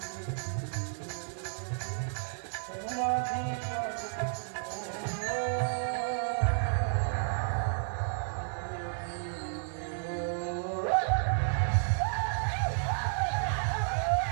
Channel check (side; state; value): left; silent; 56 dB below the other